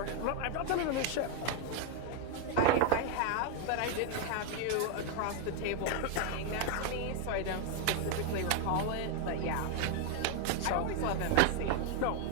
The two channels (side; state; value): both; different; correlation 0.00